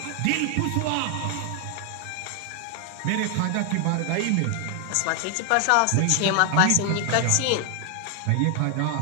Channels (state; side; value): different; both; correlation 0.00